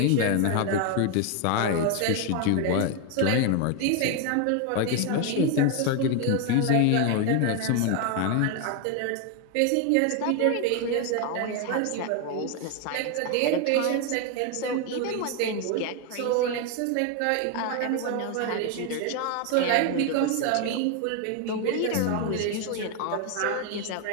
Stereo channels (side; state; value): both; different; correlation 0.01